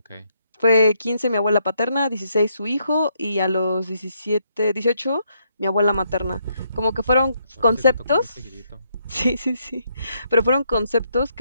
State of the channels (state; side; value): inverted; both; correlation -0.75